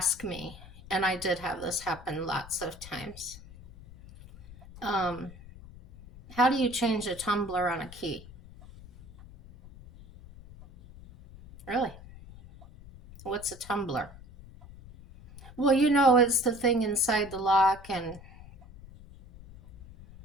me, and I did have this happen lots of times. How do you change a tumbler on a key? Really? What's a tumbler? Well, it's the thing inside the lock, and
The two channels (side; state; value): left; noise; rumble, 18 dB below the sound